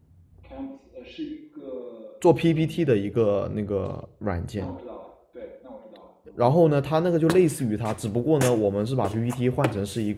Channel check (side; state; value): both; identical; correlation 1.00